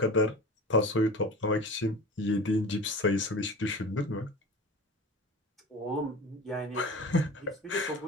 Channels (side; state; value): both; normal; correlation 0.35